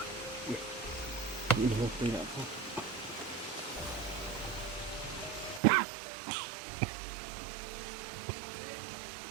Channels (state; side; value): drops out; left; at 5.6 s